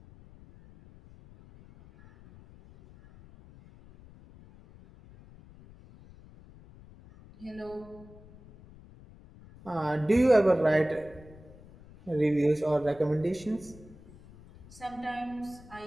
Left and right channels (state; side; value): noise; left; rumble, 22 dB below the sound